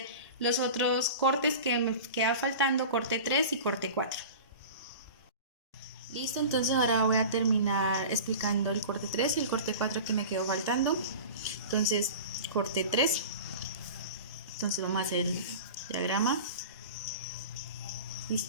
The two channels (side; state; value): both; inverted; correlation -0.35